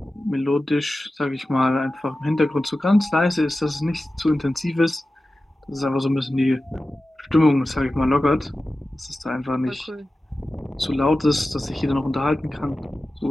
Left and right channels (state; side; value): normal; both; correlation 0.94